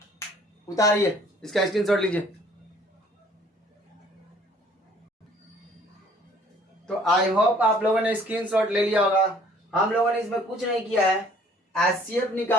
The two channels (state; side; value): normal; both; correlation 0.57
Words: उतारिए, इसका स्क्रीनशॉट लीजिए। तो आई होप आप लोगों ने स्क्रीनशॉट ले लिया होगा। हम लोगों ने इसमें कुछ नहीं किया है, एचसीएफ